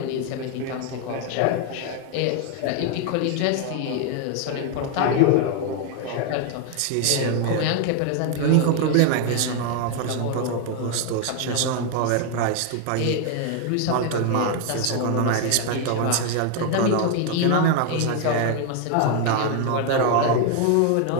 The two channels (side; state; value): both; different; correlation 0.01